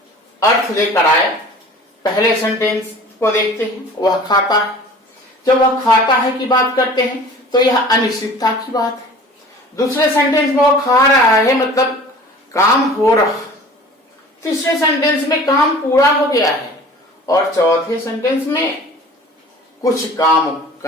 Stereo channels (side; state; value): both; normal; correlation 0.44